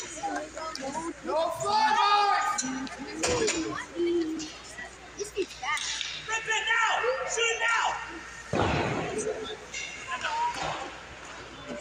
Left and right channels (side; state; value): both; identical; correlation 1.00